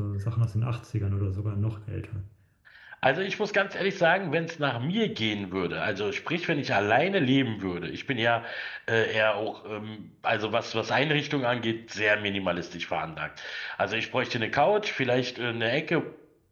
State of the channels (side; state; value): both; identical; correlation 1.00